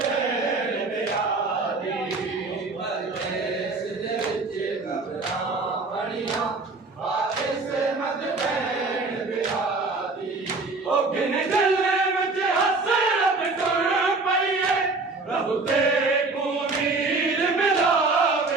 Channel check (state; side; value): quieter; left; 3.7 dB